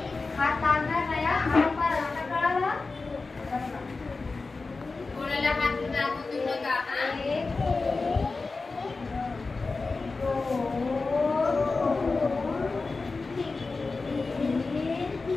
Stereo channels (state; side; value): quieter; right; 3.9 dB